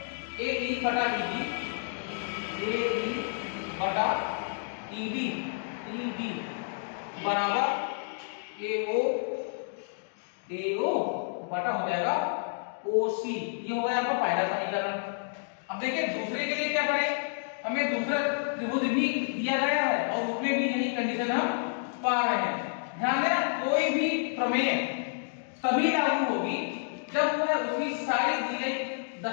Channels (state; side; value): silent; right; digital silence